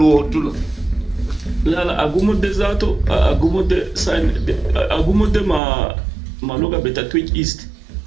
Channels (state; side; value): drops out; left; at 5.6 s